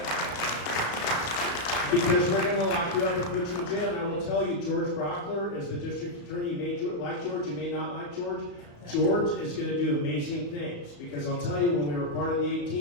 Because we're going to lock you up and put you in jail. And I will tell you, George Brockler, as the district attorney, you may like George, you may not like George. George is going to do amazing things. Because I'll tell you, when we were part of the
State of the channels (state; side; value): late; right; 34 ms